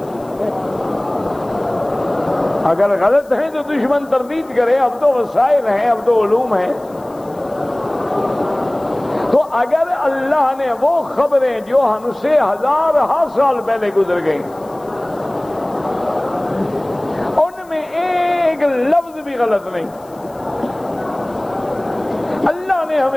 اگر غلط ہیں تو دشمن تردید کرے، اب تو وسائل ہیں، اب تو علوم ہیں. تو اگر اللہ نے وہ خبریں جو ہم سے ہزارہ سال پہلے گزر گئیں ان میں ایک لفظ بھی غلط نہیں، اللہ نے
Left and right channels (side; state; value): left; noise; hiss, 28 dB below the sound